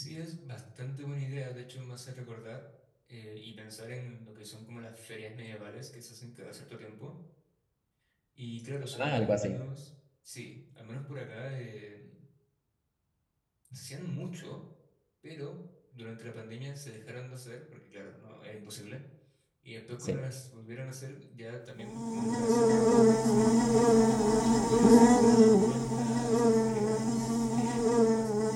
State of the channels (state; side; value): identical; both; correlation 1.00